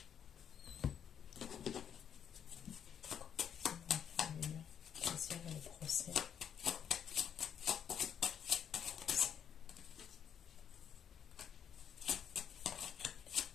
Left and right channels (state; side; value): quieter; right; 8.5 dB